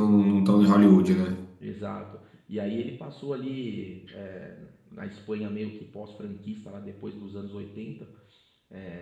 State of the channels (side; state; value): both; identical; correlation 1.00